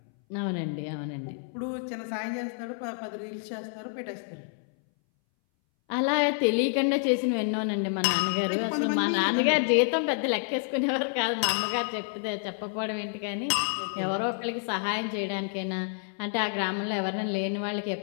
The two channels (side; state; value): right; silent; 59 dB below the other